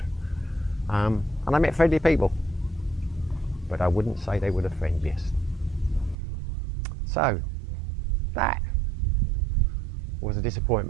and I met friendly people, but I wouldn't say they were the friendliest. So that was a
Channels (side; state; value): left; drops out; at 6.2 s